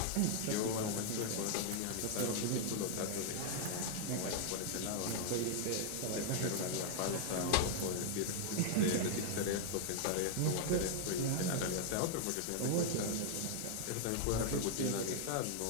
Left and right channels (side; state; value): both; different; correlation -0.01